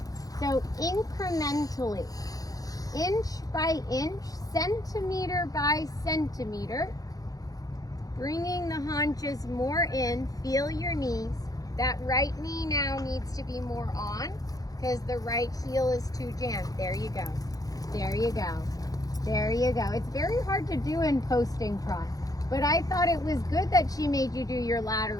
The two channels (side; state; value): right; late; 0.17 ms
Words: So incrementally, inch by inch, centimeter by centimeter, bringing the haunches more in. Feel your knees. That right knee now needs to be more on because the right heel is too jammed. There you go. There you go. There you go. It's very hard to do in posting trot, but I thought it was good that she made you do your